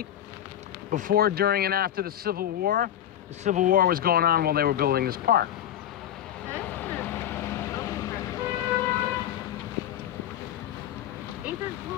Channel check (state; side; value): quieter; right; 11.1 dB